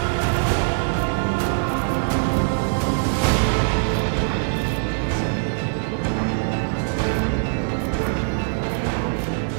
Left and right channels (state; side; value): silent; left; digital silence